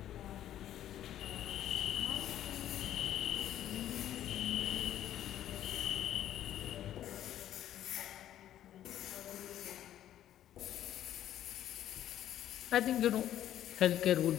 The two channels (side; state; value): right; quieter; 11.8 dB